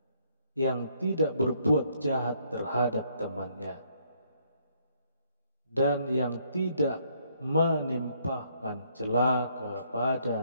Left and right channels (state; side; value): inverted; both; correlation -0.69